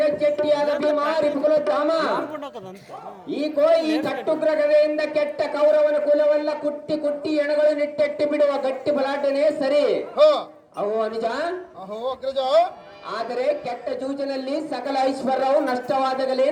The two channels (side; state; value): both; identical; correlation 1.00